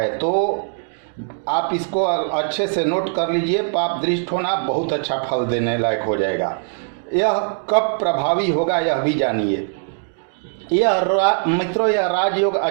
तो आप इसको अच्छे से नोट कर लीजिए, पाप दृष्ट होना बहुत अच्छा फल देने लायक हो जाएगा। यह कब प्रभावी होगा यह भी जानिए। मित्रों, यह राजयोग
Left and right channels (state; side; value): silent; left; 65 dB below the other